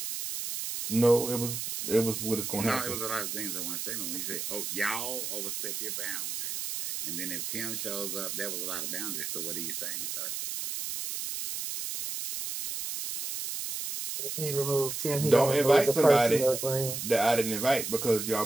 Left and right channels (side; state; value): right; noise; hiss, 4 dB below the sound